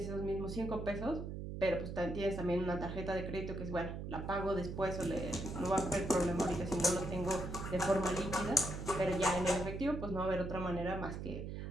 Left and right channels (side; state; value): right; noise; hum, 6 dB below the sound